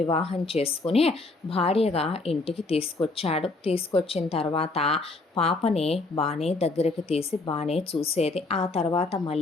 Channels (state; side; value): quieter; right; 3.4 dB